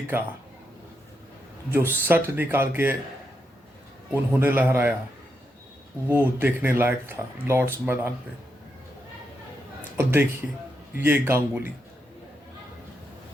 का जो शट निकाल के उन्होंने लहराया वो देखने लायक था लॉर्ड्स मैदान पे। और देखिए ये गांगुली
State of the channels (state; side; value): normal; both; correlation 0.83